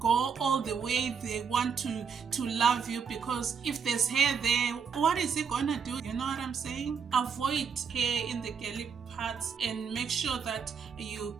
all the way they want to love you, because if there's hair there, what is it gonna do? You know what I'm saying? Avoid hair in the girly parts and make sure that you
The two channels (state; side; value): quieter; left; 6.4 dB